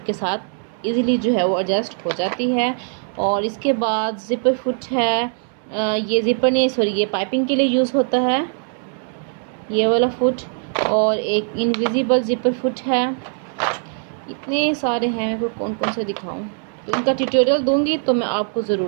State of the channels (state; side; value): silent; left; 56 dB below the other